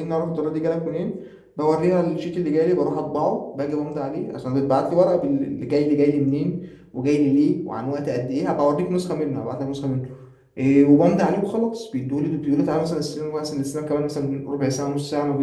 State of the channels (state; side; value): identical; both; correlation 1.00